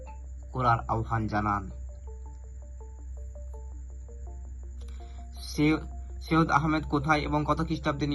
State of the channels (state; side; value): identical; both; correlation 1.00